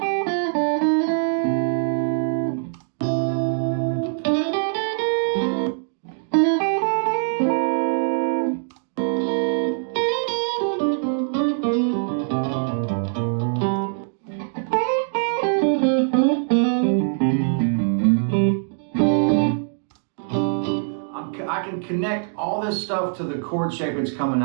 I can connect all this stuff to the chord shape it's coming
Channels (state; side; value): silent; left; digital silence